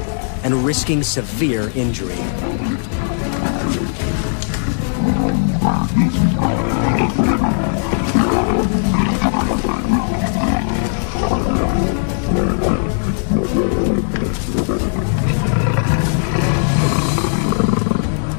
And risking severe injury.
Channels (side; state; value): right; silent; 66 dB below the other